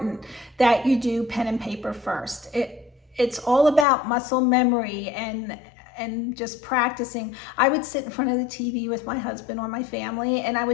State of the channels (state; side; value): drops out; right; at 3.9 s